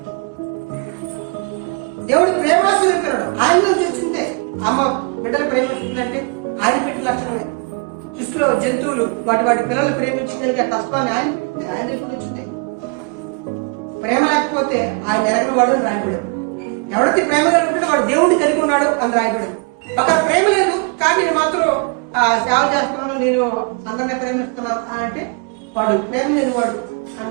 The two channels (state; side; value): quieter; left; 33.8 dB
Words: దేవుడు ప్రేమ స్వరూపినాడు. ఆయనలో వచ్చిందే అమ్మ బిడ్డలు ప్రేమిస్తుందంటే ఆయన పెట్టిన లక్షణమే. సృష్టిలో జంతువులు వాటి పిల్లలు ప్రేమించగలిగే తత్వాన్ని ఆయన వచ్చింది. ప్రేమ లేకపోతే ఆయన ఎరగిన వాడు అని రాయబడేది. ఎవరైతే ప్రేమ కలిగి ఉంటాడో వాడు దేవుడిని కలిగి ఉన్నాడు అని రాయబడింది. అక్కడ ప్రేమ లేదు కానీ నేను మాత్రం సేవ చేస్తున్నాను, నేను అందరినీ ప్రేమిస్తున్నాను అని అంటే వాడు ప్రేమ లేనివాడు అని